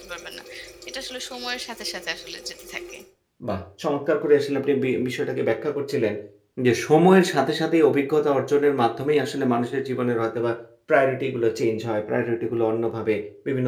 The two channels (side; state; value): both; identical; correlation 1.00